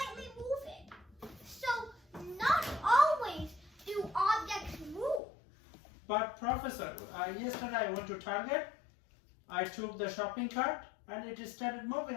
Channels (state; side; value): drops out; right; at 5.2 s